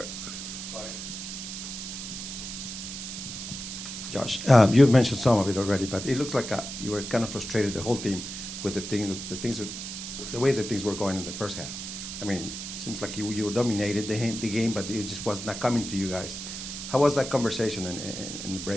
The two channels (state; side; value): noise; right; hiss, 7 dB below the sound